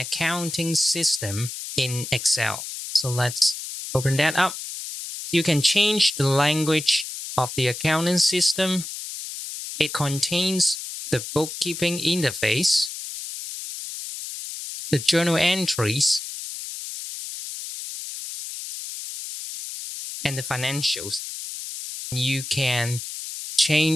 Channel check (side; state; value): left; noise; hiss, 8 dB below the sound